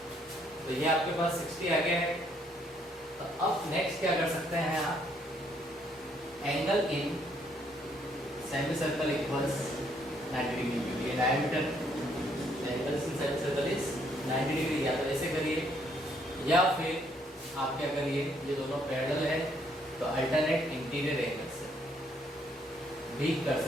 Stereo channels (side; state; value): both; normal; correlation 0.69